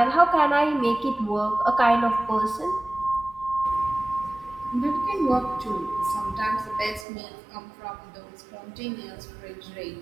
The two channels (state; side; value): drops out; left; at 7.1 s